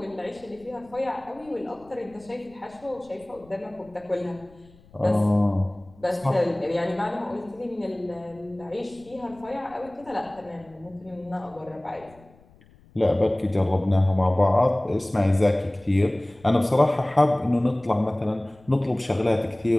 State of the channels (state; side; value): noise; left; rumble, 27 dB below the sound